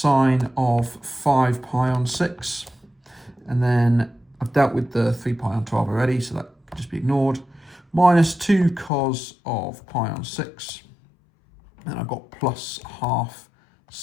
of 5 pi on 6. And then I've dealt with the 3 pi on 12 already, so that can just be ignored. Minus 2 cos of pi on 6. And I've got plus half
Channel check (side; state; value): right; drops out; at 8.9 s